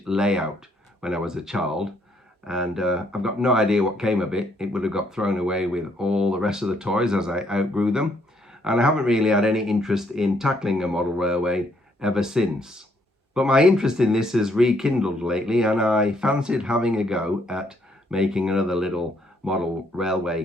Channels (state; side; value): normal; both; correlation 0.70